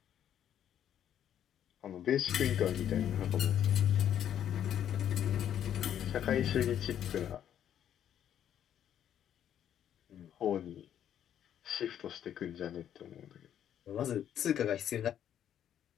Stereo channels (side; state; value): right; quieter; 10.0 dB